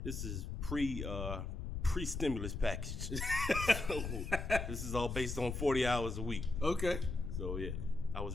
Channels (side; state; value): left; noise; rumble, 4 dB below the sound